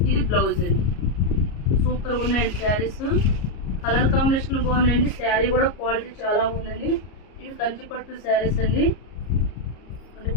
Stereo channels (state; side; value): late; right; 34 ms